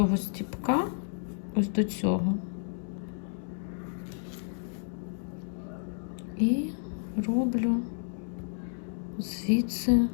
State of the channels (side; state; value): right; silent; digital silence